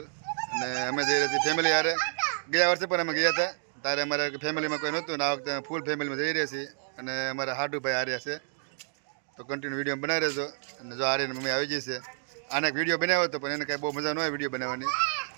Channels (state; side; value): silent; left; digital silence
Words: અને અમે જઈ રહ્યા છીએ ફેમિલી હારે. ગયા વર્ષે પણ અમે ગયા હતા, ત્યારે અમારે ફેમિલીમાં કોઈ નહોતું ને આ વખતે ફૂલ ફેમિલીમાં જઈ રહ્યા છીએ. અને અમારા હાડુભાઈ હાર્યા છે, તો કન્ટિન્યુ વિડીયો બનાવી રહેજો. અને જો હારીને મમ્મી આવી જશે. આને એક વિડીયો બનાવ્યો હતો પણ એને કાંઈ બહુ મજા ન હોય વિડીયો બનાવવાની.